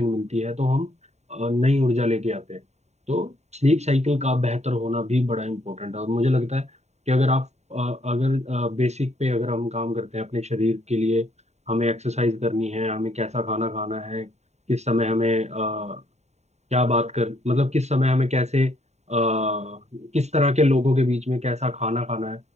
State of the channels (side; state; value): left; late; 0.32 ms